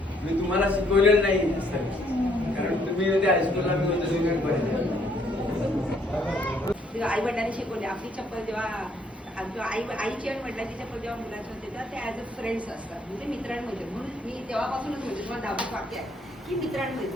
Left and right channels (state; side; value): normal; both; correlation 0.67